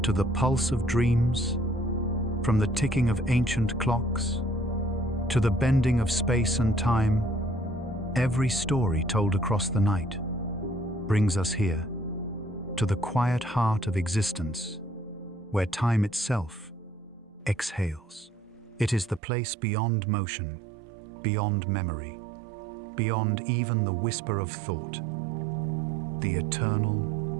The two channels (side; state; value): left; drops out; at 19.2 s